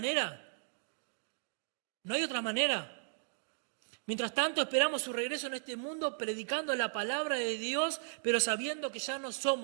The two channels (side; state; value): left; silent; digital silence